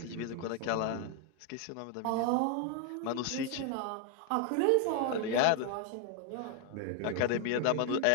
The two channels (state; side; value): different; both; correlation 0.01